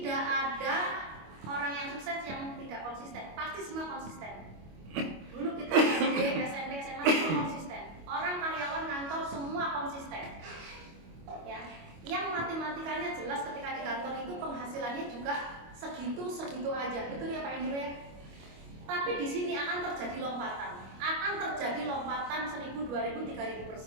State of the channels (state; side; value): late; left; 25 ms